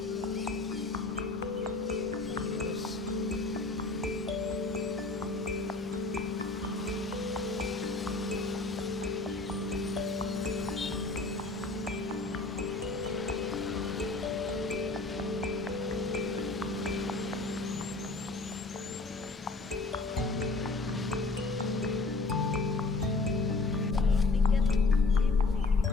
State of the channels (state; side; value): quieter; right; 3.5 dB